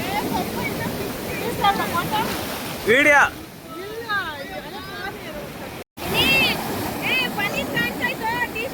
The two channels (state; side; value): identical; both; correlation 1.00